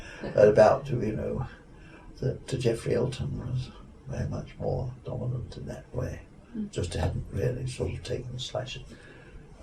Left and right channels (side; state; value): both; identical; correlation 1.00